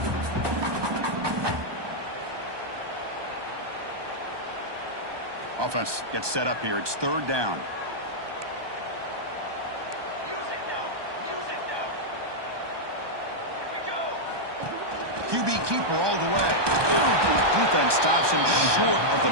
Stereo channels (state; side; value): late; left; 1.2 ms